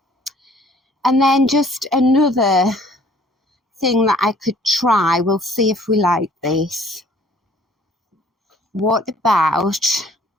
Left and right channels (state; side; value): normal; both; correlation 0.56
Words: then just another thing that I could try. We'll see if we like this. What about